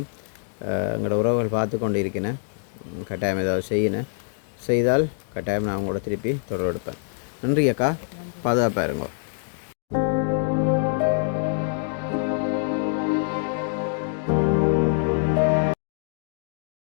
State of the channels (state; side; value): silent; right; digital silence